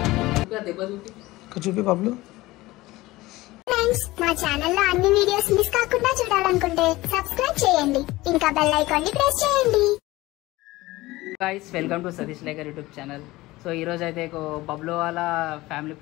చూపి పబ్లు. ఫ్రెండ్స్, మా ఛానల్లో అన్ని వీడియోస్ మిస్ కాకుండా చూడాలనుకుంటే సబ్స్క్రైబ్ చేయండి, ఇంకా బెల్ ఐకాన్ ని ప్రెస్ చేయండి. Guys, welcome to Satish lacquer YouTube channel. So ఈరోజు అయితే బబ్లు వాళ్ళ ఫ్యామిలీ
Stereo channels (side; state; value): right; quieter; 19.1 dB